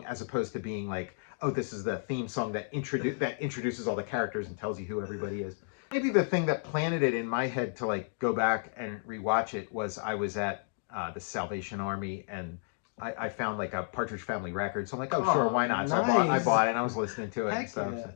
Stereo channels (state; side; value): silent; right; digital silence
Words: as opposed to being like, oh, this is the theme song that introduces all the characters and tells you who everybody is. Maybe the thing that planted it in my head to like go back and rewatch it was I was at the Salvation Army, and I found like a Partridge Family record. So I'm like, oh, sure, why not? So nice. I bought it and I was listening to it and stuff. Yeah.